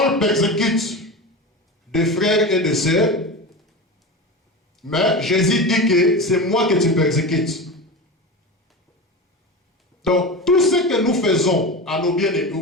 persécute des frères et des sœurs, mais Jésus dit que c'est moi que tu persécutes. Donc, tout ce que nous faisons à nos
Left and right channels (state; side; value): normal; both; correlation 0.26